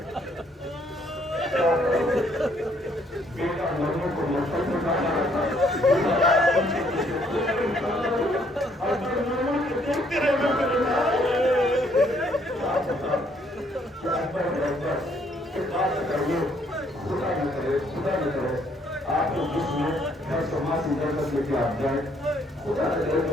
بیٹا مرنے کو مطلب میں کہا آپ کو جس میں ہر سماسی درد لے کے آپ جائیں خدا نے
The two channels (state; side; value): normal; both; correlation 0.67